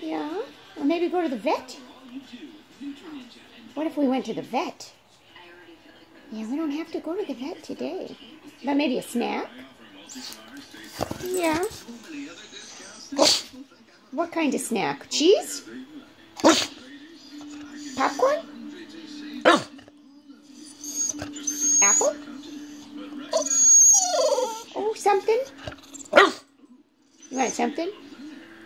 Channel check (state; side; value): identical; both; correlation 1.00